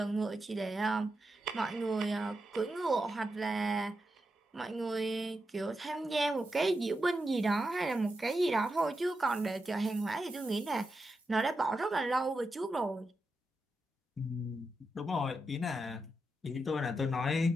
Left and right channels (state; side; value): normal; both; correlation 0.87